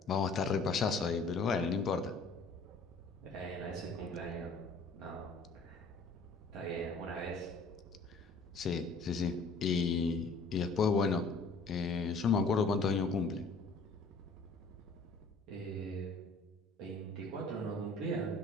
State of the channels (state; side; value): quieter; right; 3.6 dB